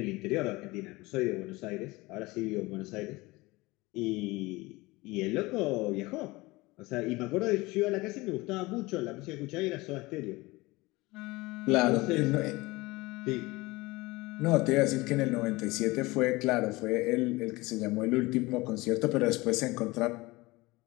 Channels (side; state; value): right; quieter; 21.8 dB